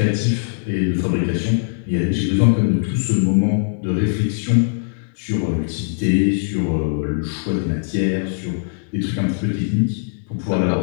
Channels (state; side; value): silent; right; 65 dB below the other